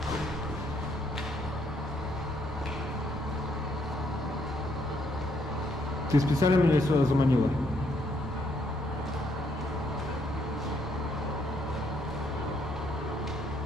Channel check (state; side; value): normal; both; correlation 0.71